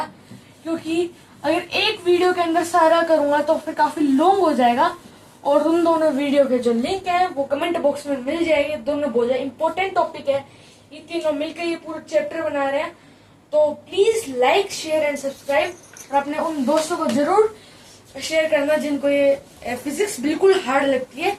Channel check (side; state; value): both; identical; correlation 1.00